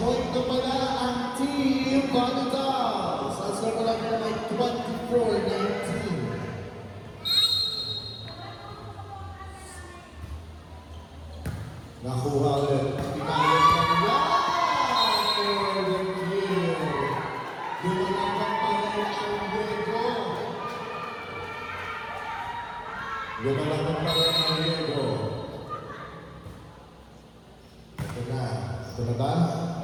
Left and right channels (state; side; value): identical; both; correlation 1.00